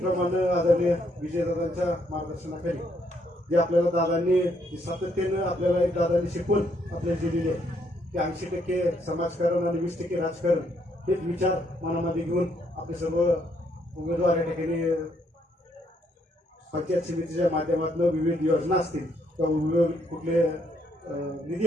आदरणीय विजयदादांच्या मार्गदर्शनाखाली जे आपल्याला दादांनी सातत्यानं आपल्याला एक दादांनी शिकवण आपल्याला दिलेली आहे की 80% समाजकारण आणि 20% राजकारण हेच विचार मनामध्ये घेऊन आपले सर्व उमेदवार या ठिकाणी पंचायत समितीच्या माध्यमातून विविध योजना असतील किंवा विविध कुठले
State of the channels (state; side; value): normal; both; correlation 0.72